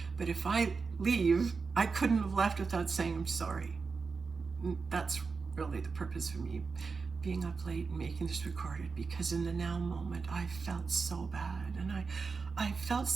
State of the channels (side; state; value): left; quieter; 4.8 dB